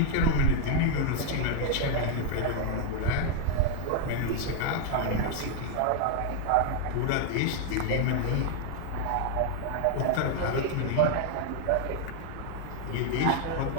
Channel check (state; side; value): different; both; correlation 0.00